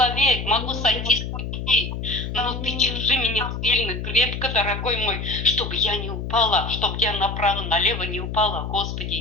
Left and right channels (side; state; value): left; noise; hum, 5 dB below the sound